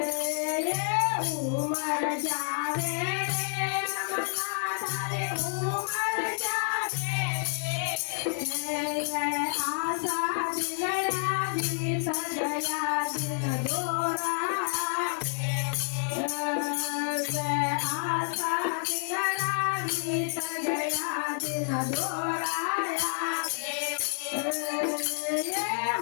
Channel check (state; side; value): silent; right; digital silence